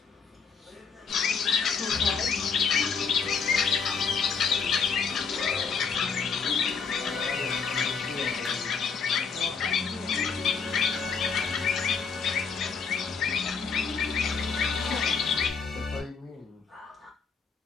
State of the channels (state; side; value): quieter; right; 5.6 dB